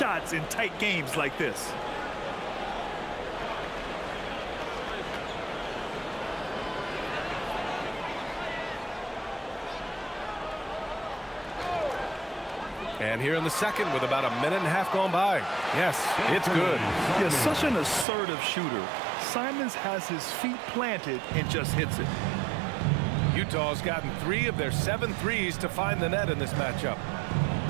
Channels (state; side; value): drops out; left; at 18.1 s